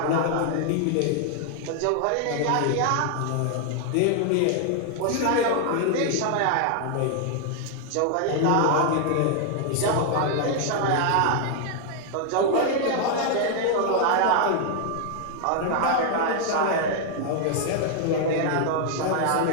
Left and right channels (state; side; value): different; both; correlation 0.00